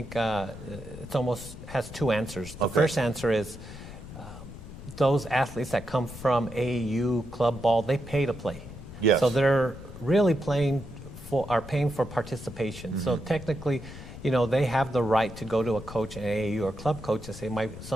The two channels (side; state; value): left; noise; rumble, 13 dB below the sound